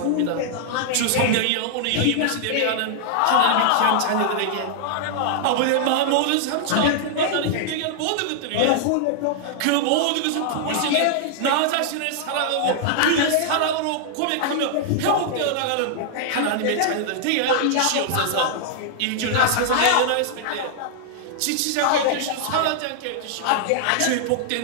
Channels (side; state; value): both; different; correlation -0.01